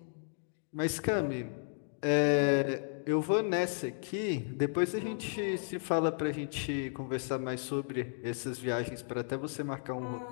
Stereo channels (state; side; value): silent; right; digital silence